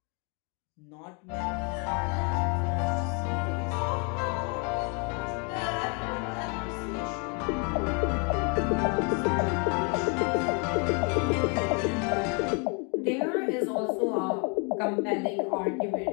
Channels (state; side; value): quieter; right; 35.0 dB